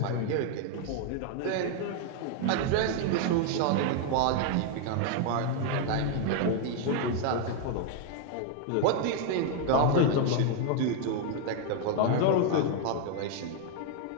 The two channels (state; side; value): different; both; correlation 0.00